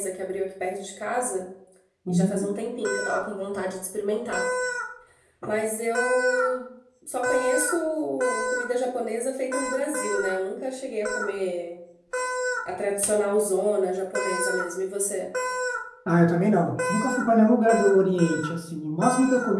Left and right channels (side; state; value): both; identical; correlation 1.00